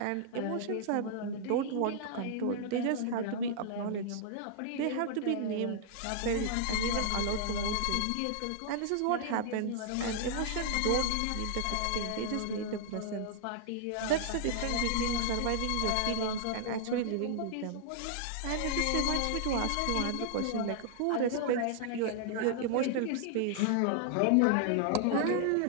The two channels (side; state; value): both; different; correlation -0.01